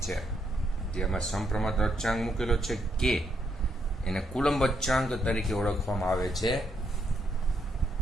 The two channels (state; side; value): normal; both; correlation 0.77